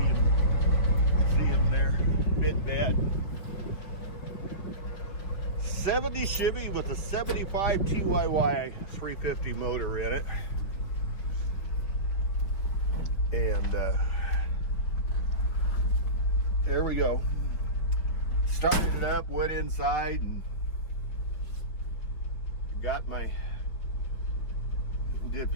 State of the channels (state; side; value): late; right; 5.8 ms